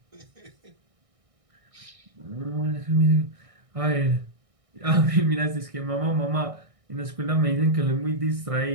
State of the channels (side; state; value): left; late; 1.6 ms